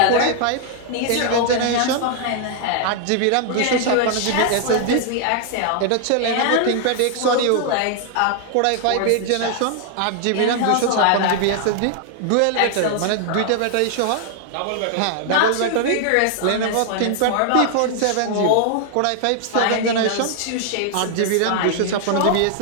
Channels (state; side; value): different; both; correlation 0.00